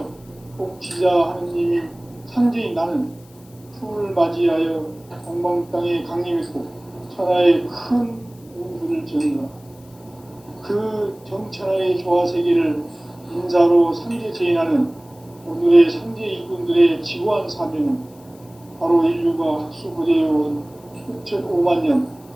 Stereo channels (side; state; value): left; noise; hiss, 28 dB below the sound